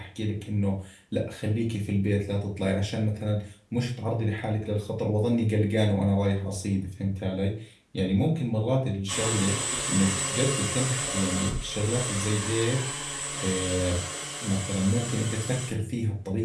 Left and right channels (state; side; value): identical; both; correlation 1.00